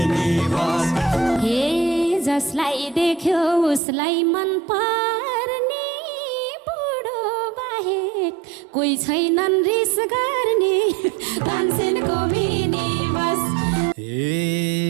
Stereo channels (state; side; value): drops out; left; at 3.8 s